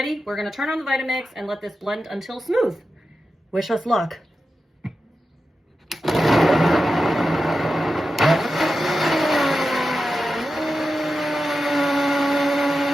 We're gonna turn on the Vitamix and let this blend until smooth. Wish us luck.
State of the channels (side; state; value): both; normal; correlation 0.91